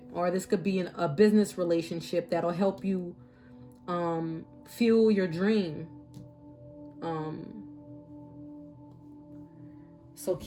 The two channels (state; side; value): identical; both; correlation 1.00